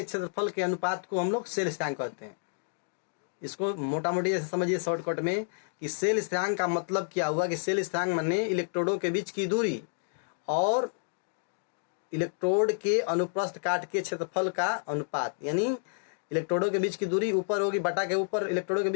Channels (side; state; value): right; silent; digital silence